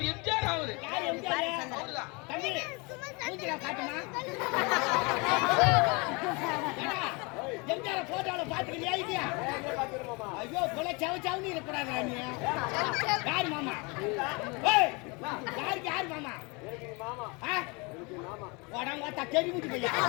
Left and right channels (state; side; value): quieter; right; 28.7 dB